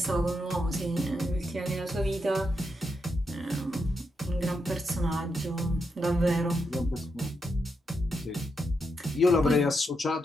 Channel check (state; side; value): normal; both; correlation 0.83